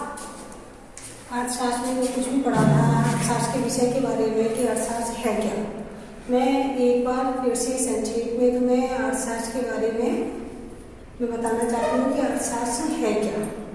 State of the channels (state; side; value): identical; both; correlation 1.00